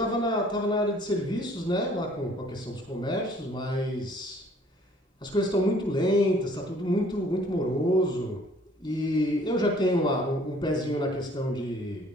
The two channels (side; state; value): both; normal; correlation 0.57